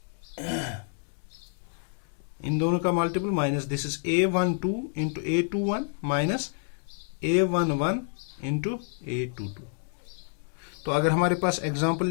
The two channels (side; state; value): right; silent; digital silence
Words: इन दोनों का multiple minus this is A12 into A21 minus A11 into A22। तो अगर हमारे पास एग्जाम्पल